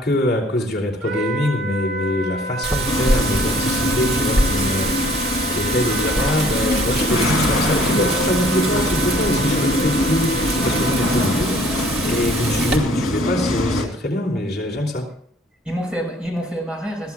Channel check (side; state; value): both; normal; correlation 0.57